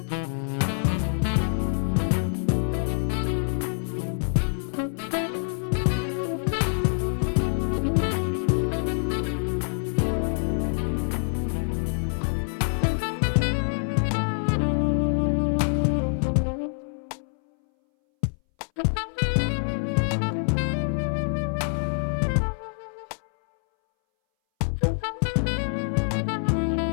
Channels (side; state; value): right; silent; 61 dB below the other